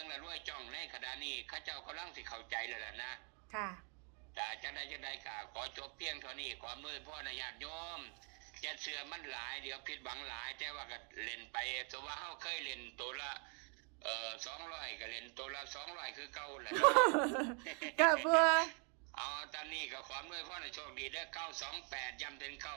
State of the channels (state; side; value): quieter; left; 38.3 dB